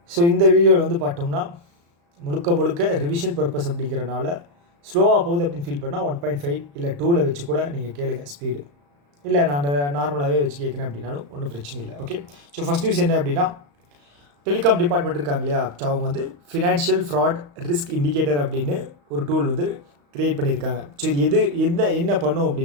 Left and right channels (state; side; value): late; left; 35 ms